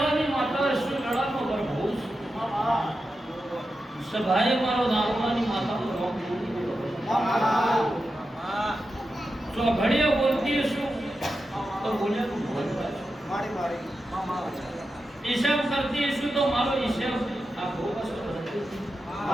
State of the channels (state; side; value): normal; both; correlation 0.90